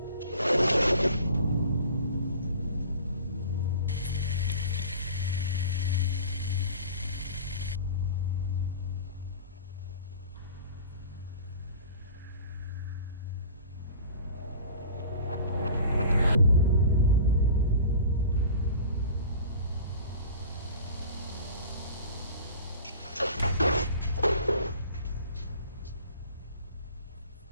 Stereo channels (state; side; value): inverted; both; correlation -0.42